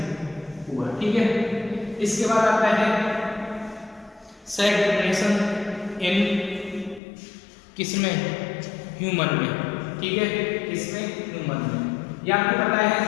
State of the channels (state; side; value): drops out; right; at 7.0 s